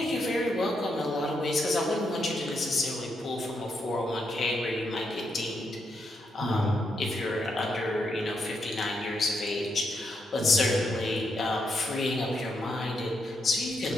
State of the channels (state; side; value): normal; both; correlation 0.80